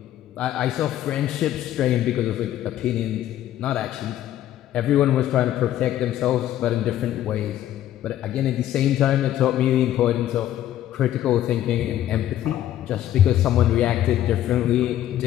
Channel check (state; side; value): quieter; right; 12.4 dB